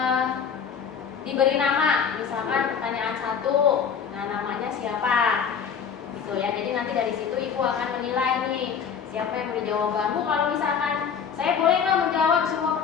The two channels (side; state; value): right; quieter; 6.9 dB